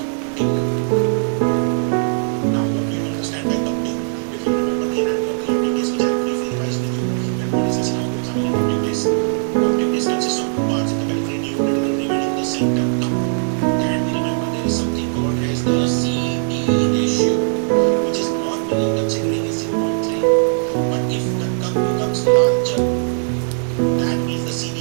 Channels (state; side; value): silent; left; 60 dB below the other